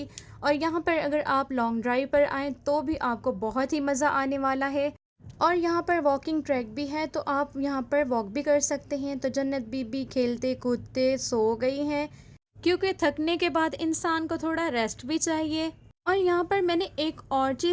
और यहाँ पर अगर आप लॉन्ग ड्राइव पर आएँ तो भी आपको बहुत ही मज़ा आने वाला है। और यहाँ पर वॉकिंग ट्रैक भी है, तो आप यहाँ पर वॉक भी कर सकते हैं। तो जन्नत बीबी खेलते कूदते सो गई हैं। क्योंकि थकने के बाद इंसान को थोड़ा रेस्ट भी चाहिए। और यहाँ पर मैंने एक और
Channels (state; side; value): identical; both; correlation 1.00